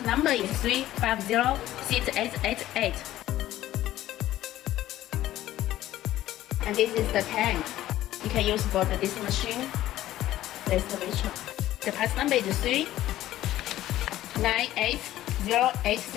number is 3506888. And this is the tank you can use for this machine, the excavator. The part number is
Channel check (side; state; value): right; quieter; 14.2 dB